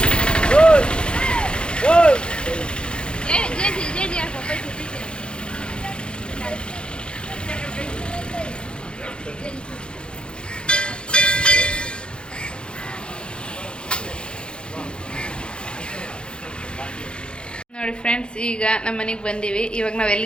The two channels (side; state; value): right; late; 0.053 ms